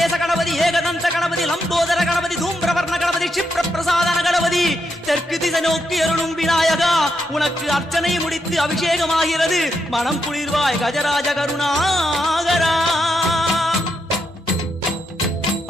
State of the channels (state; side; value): normal; both; correlation 0.81